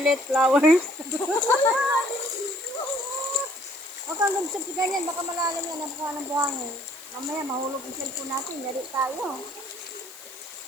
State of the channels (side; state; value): left; noise; hiss, 18 dB below the sound